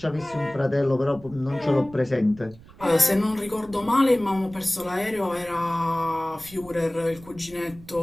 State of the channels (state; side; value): noise; right; rumble, 21 dB below the sound